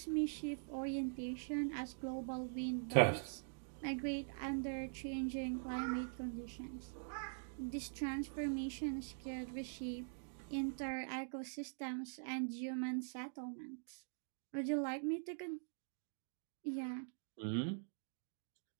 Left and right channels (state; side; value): silent; left; digital silence